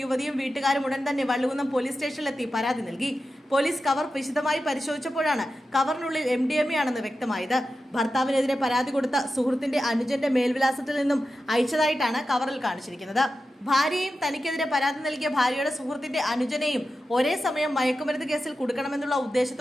യുവതിയും വീട്ടുകാരും ഉടൻ തന്നെ വള്ളുകുന്നം പോലീസ് സ്റ്റേഷനിലെത്തി പരാതി നൽകി. പോലീസ് കവർ വിശദമായി പരിശോധിച്ചപ്പോഴാണ് കവറിനുള്ളിൽ MDMA ആണെന്ന് വ്യക്തമായത്. ഭർത്താവിനെതിരെ പരാതി കൊടുത്ത സുഹൃത്തിന്റെ അനുജന്റെ മേൽവിലാസത്തിൽ നിന്നും അയച്ചതായിട്ടാണ് കവറിൽ കാണിച്ചിരിക്കുന്നത്. ഭാര്യയും തനിക്കെതിരെ പരാതി നൽകിയ ഭാര്യയുടെ സുഹൃത്തിന്റെ അനുജനെയും ഒരേ സമയം മയക്കുമരുന്ന് കേസിൽ കൊടുക്കണമെന്നുള്ള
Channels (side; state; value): both; normal; correlation 0.92